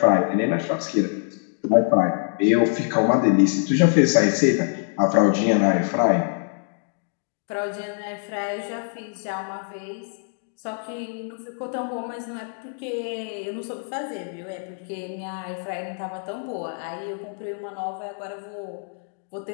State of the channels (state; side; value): silent; right; digital silence